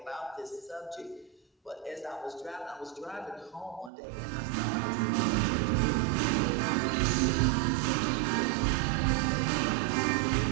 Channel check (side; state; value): left; drops out; at 3.9 s